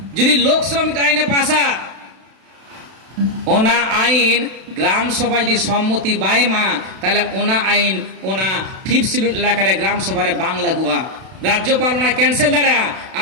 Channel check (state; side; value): late; left; 32 ms